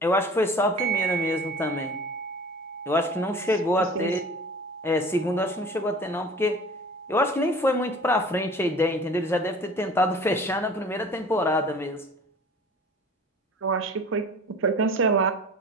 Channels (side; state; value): both; normal; correlation 0.43